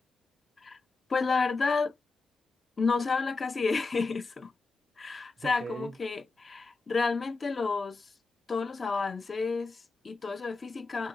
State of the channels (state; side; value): quieter; right; 4.0 dB